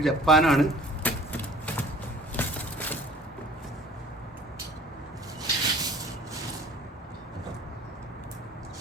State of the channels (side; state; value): both; normal; correlation 0.48